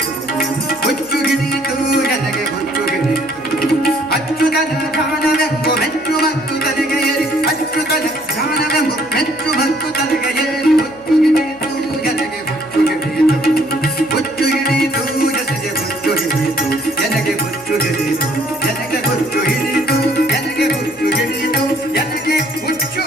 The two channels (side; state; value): right; noise; hum, 28 dB below the sound